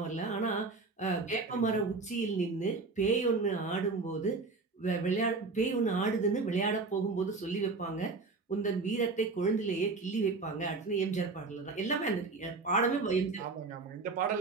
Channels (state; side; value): quieter; left; 3.9 dB